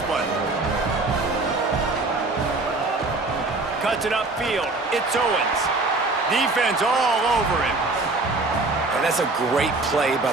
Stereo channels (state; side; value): quieter; left; 3.3 dB